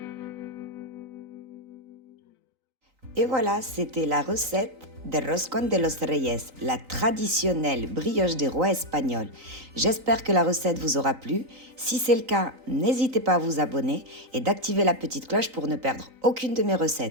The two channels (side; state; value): left; late; 3.9 ms